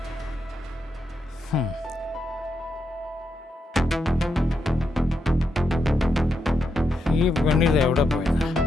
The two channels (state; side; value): normal; both; correlation 0.83